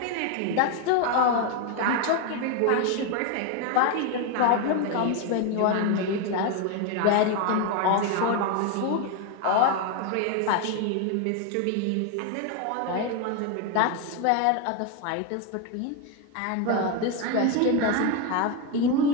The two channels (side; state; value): both; different; correlation 0.02